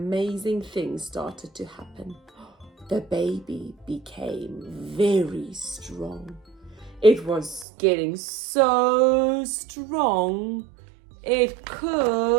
thing started to happen. The baby became very strong. It was getting so strong, it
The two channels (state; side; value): drops out; left; at 7.7 s